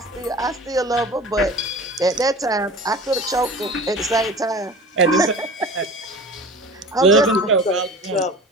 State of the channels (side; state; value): both; normal; correlation 0.38